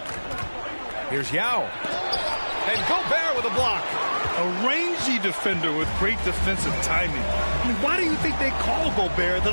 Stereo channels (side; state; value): both; inverted; correlation -1.00